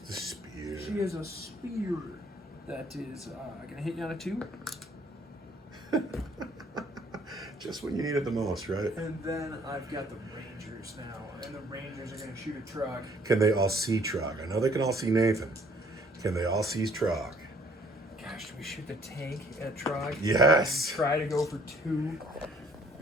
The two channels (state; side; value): normal; both; correlation 0.60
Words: spear. She has a spear that is going to hit you on a 2. Just when you need it the most, right? And then I've got the Rangers now. And the Rangers are going to shoot a Trog. Can they all see Trog? I know they can all see Nathan. Can they all see Trog? Gosh, do we shoot the tank at Trog? Yes. And try to go for 2